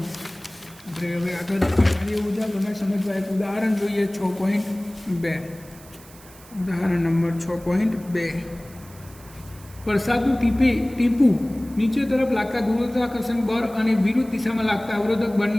આપણે હવે આગળ કાર્ય ઉર્જા પ્રમેય સમજવા એક ઉદાહરણ જોઈએ. 6.2 ઉદાહરણ નંબર 6.2. વરસાદનું ટીપું નીચે તરફ લાગતા ગુરુત્વાકર્ષણ બળ અને વિરુદ્ધ દિશામાં લાગતા અવરોધક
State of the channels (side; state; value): right; noise; hiss, 22 dB below the sound